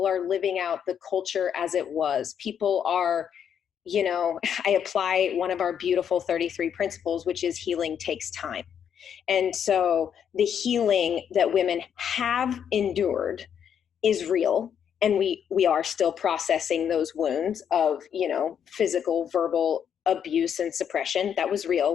are living out the culture as it was. People are, I apply one of our beautiful 33 principles, which is healing takes time. And so the healing that women have endured is real. And we are still processing those wounds of, physical, verbal abuse and suppression. That was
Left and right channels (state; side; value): quieter; right; 8.3 dB